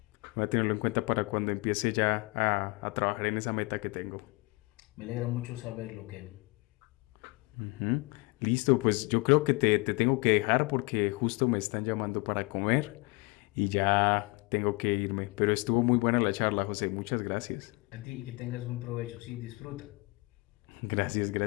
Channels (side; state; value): right; quieter; 26.6 dB